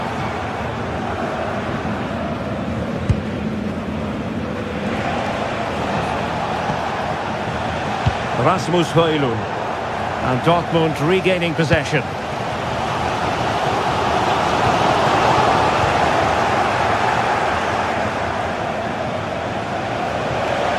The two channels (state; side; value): identical; both; correlation 1.00